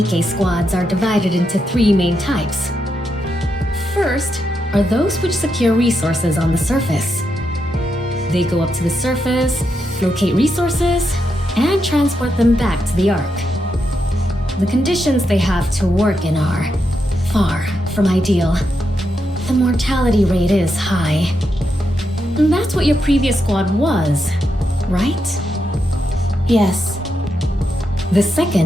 squads are divided into 3 main types. First are those which secure resources on the surface. They go up to the surface, locate resources, and transport them back to the Ark. The conditions they have to work in are far from ideal. The mortality rate is high. And that's what your previous squad was, right? Yes. The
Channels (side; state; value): both; normal; correlation 0.84